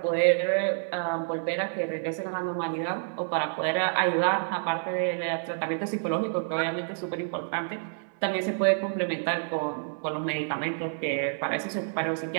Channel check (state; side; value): silent; left; 58 dB below the other